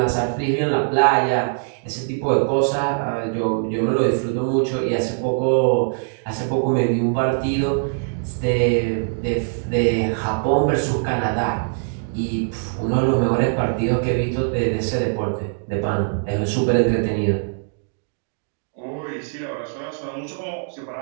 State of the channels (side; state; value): left; silent; digital silence